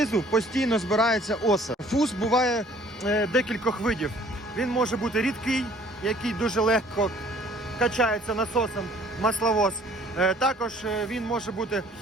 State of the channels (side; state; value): both; normal; correlation 0.55